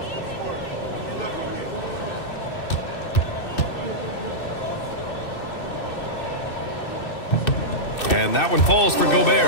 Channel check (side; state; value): right; late; 2.6 ms